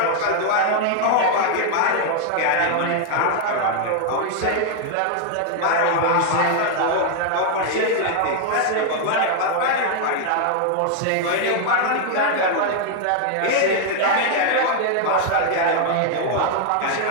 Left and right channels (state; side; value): different; both; correlation 0.00